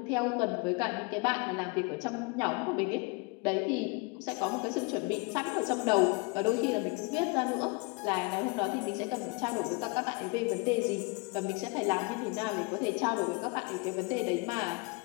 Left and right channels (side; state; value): right; quieter; 29.3 dB